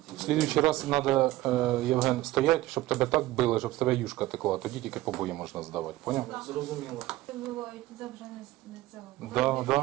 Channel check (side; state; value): left; quieter; 16.9 dB